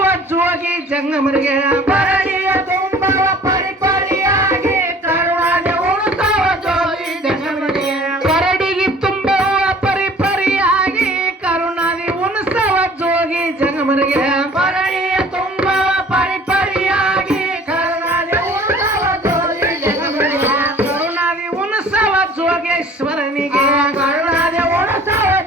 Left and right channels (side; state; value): both; normal; correlation 0.50